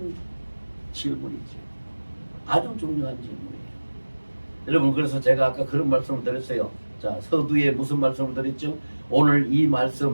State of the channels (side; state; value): both; inverted; correlation -1.00